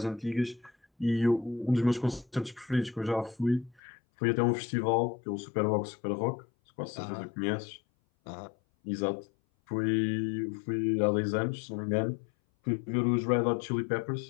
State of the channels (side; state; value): right; drops out; at 3.8 s